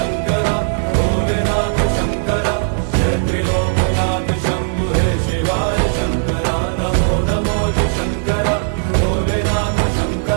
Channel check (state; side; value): silent; left; digital silence